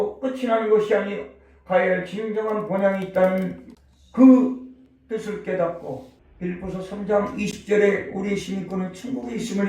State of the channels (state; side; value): identical; both; correlation 1.00